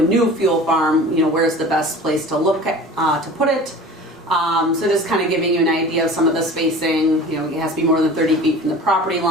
new fuel farm, where's the best place to look at to put it. So just kind of giving you an idea of some of the spacing. It has to be more than 30 feet from the property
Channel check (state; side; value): normal; both; correlation 0.40